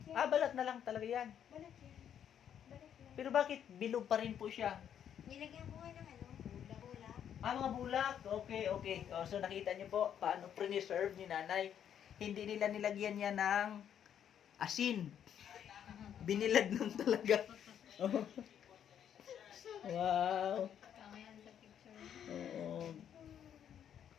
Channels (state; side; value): quieter; right; 9.2 dB